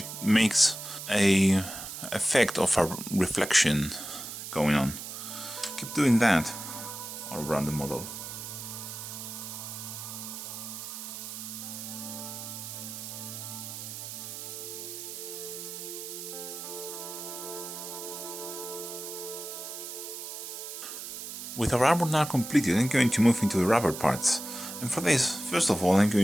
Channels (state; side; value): noise; right; hiss, 9 dB below the sound